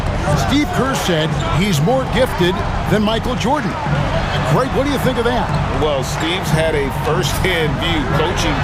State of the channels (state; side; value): identical; both; correlation 1.00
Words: Steve Kerr said he's more gifted than Michael Jordan. Greg, what do you think of that? Well, Steve's had a first-hand view coaching